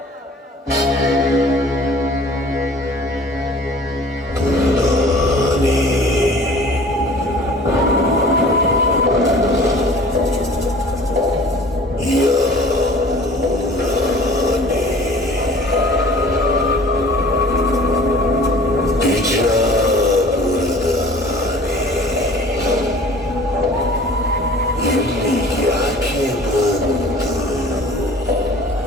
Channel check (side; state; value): both; normal; correlation 0.47